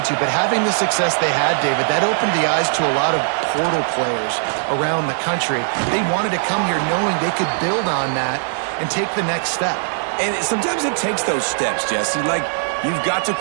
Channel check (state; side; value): silent; left; digital silence